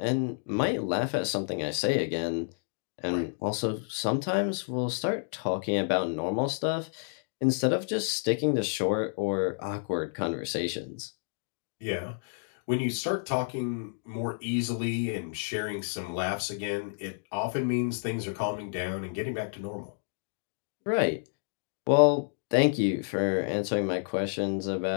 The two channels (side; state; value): right; silent; digital silence